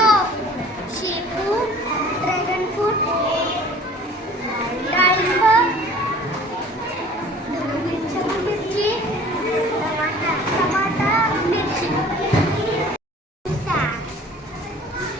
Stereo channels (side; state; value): both; normal; correlation 0.48